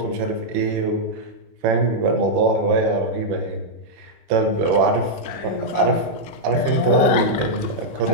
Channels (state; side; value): late; left; 6.3 ms